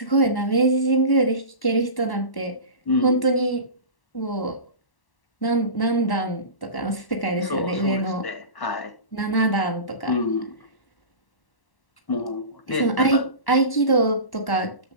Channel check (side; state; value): right; late; 1.1 ms